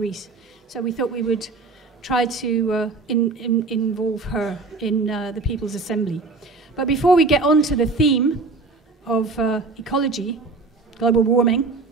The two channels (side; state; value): left; quieter; 3.9 dB